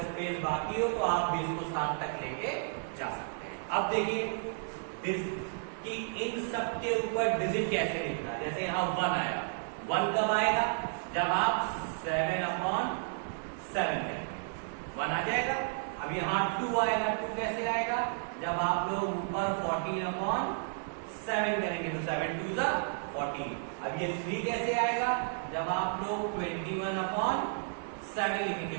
स्पेस बाकी हो तो आप भी इसको 7 तक लेके जा सकते हैं। अब देखिए कि इन सब के ऊपर डिजिट कैसे लिखना। जैसे यहां 1 आया, 1 कब आएगा? जब आप 7/7 करेंगे, 1 आ जाएगा। अब यहां 2 आएगा, 2 कैसे आएगा? जब आप लोग ऊपर 14/7 करेंगे, तो 7 2 ज़ा 14। अब ये 3 कैसे आएगा? जब आप लोग 21/7 लिखेंगे।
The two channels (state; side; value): silent; left; digital silence